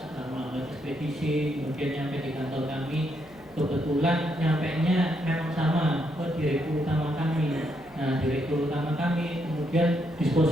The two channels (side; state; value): left; noise; hum, 27 dB below the sound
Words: melalui ekspedisi, kemudian nyampe di kantor kami, kebetulan nyampenya memang sama ke direktur utama kami. Nah, direktur utama kami kemudian